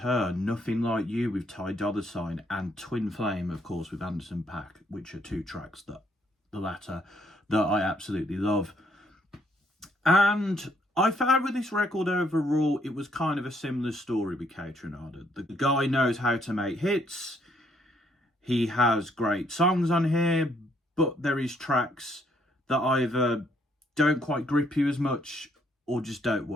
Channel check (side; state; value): both; normal; correlation 0.69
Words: Nothing Like You with Ty Dolla $ign, and Twin Flame, of course, with Anderson .Paak, which are two tracks, that the latter, that I absolutely love. And I found with this record overall, it was kind of a similar story with KAYTRANADA. The guy knows how to make hits. He has great songs on here, but there is tracks that either don't quite grip you as much or just don't